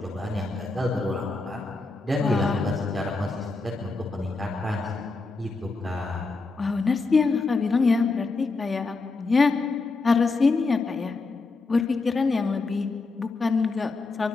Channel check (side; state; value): right; quieter; 3.8 dB